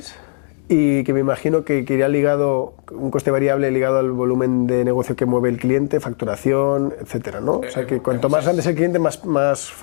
y que me imagino que iría ligado, un coste variable ligado al volumen de negocio que mueve el cliente, facturación, etcétera, ¿no? O sea, que cuanto más grande es el cliente, más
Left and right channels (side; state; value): right; silent; digital silence